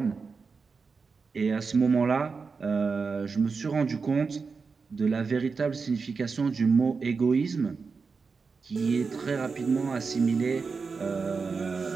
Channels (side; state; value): left; quieter; 4.9 dB